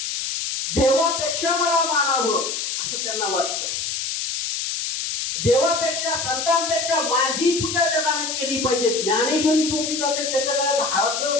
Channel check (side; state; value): left; noise; hiss, 3 dB below the sound